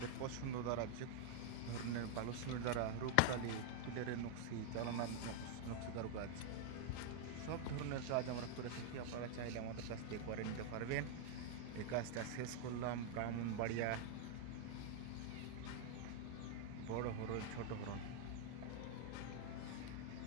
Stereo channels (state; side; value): different; both; correlation 0.00